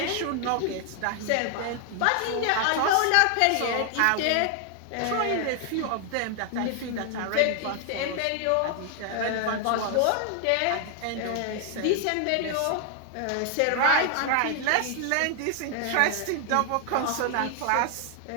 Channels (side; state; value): both; different; correlation 0.00